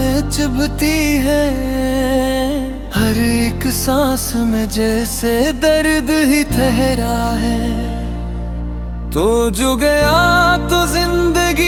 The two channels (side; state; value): both; identical; correlation 1.00